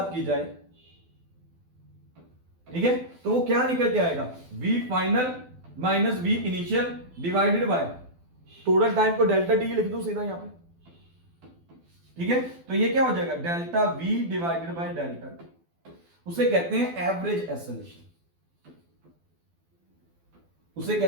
की जाए, ठीक है, तो वो क्या निकल के आएगा, v final minus v initial divided by total time को डेल्टा टी लिख दो सीधा यहां पे, ठीक है। तो ये क्या हो जाएगा, delta v divided by delta T, उसे कहते हैं एवरेज एक्सेलरेशन, उसे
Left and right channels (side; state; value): left; late; 12 ms